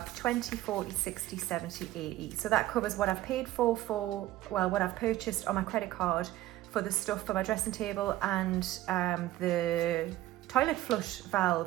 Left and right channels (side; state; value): left; quieter; 15.5 dB